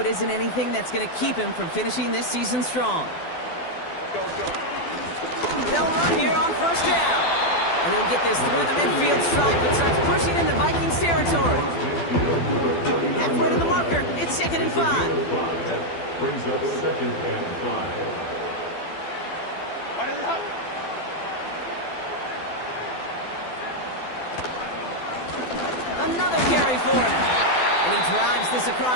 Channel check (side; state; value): right; late; 12 ms